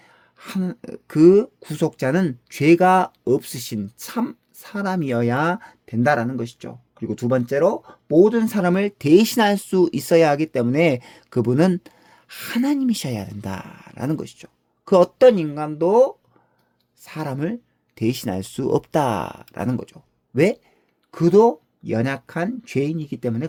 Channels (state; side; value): identical; both; correlation 1.00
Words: 그 구속자는 죄가 없으신 참 사람이어야 된다라는 것이죠. 그리고 두 번째로 모든 사람을 대신할 수 있어야 하기 때문에 그분은 하나님이셔야 된다라는 것이죠. 그 어떤 인간도 사람을 대신할 수 없다라는 거죠. 왜? 그도 연약한 죄인이기 때문에